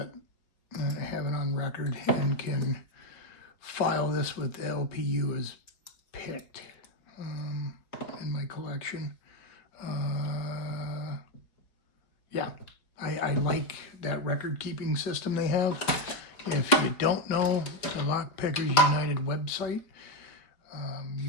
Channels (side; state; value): right; late; 4.8 ms